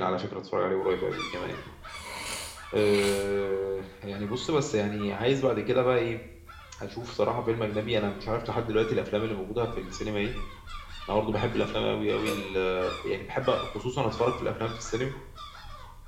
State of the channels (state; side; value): identical; both; correlation 1.00